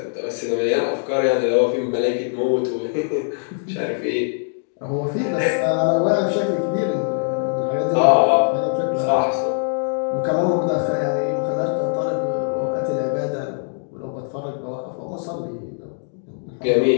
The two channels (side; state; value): right; silent; digital silence